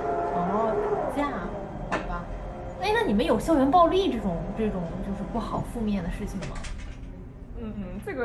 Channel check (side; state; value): both; identical; correlation 1.00